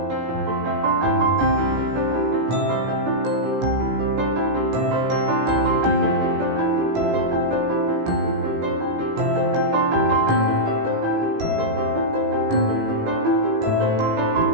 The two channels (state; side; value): late; left; 18 ms